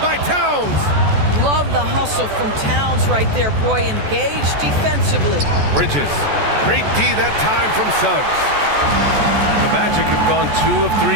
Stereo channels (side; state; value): left; late; 14 ms